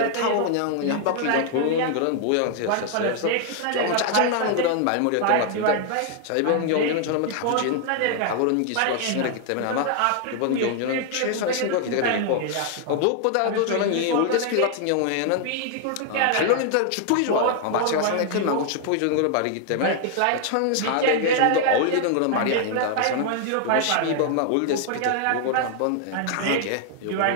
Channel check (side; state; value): both; different; correlation 0.00